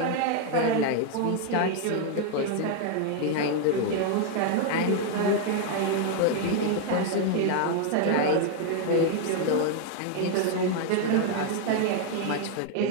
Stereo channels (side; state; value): both; different; correlation 0.00